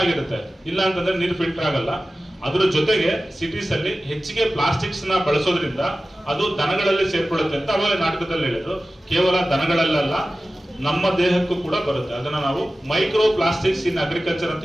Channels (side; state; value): both; normal; correlation 0.95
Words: ಇಲ್ಲ ಅಂತಂದ್ರೆ ನೀರು ಫಿಲ್ಟರ್ ಆಗಲ್ಲ. ಅದ್ರ ಜೊತೆಗೆ ಸಿಟೀಸ್ ಅಲ್ಲಿ ಹೆಚ್ಚಿಗೆ ಪ್ಲಾಸ್ಟಿಕ್ಸ್ ನ ಬಳಸೋದ್ರಿಂದ ಅದು ದನಗಳಲ್ಲಿ ಸೇರ್ಕೊಳ್ಳುತ್ತೆ ಅಂತ ಅವಾಗ ನಾಟಕದಲ್ಲಿ ಹೇಳಿದ್ರು. ಕೇವಲ ದನಗಳಲ್ಲ, ನಮ್ಮ ದೇಹಕ್ಕೂ ಕೂಡ ಬರುತ್ತೆ. ಅದನ್ನ ನಾವು ಮೈಕ್ರೋ ಪ್ಲಾಸ್ಟಿಕ್ಸ್ ಇನ್ ಅಗ್ರಿಕಲ್ಚರ್ ಅಂತ